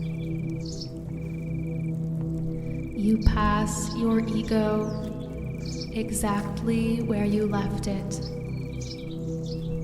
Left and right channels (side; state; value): both; identical; correlation 1.00